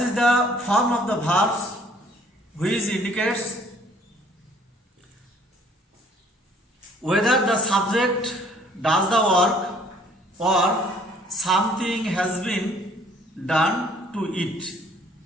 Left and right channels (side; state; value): both; normal; correlation 0.58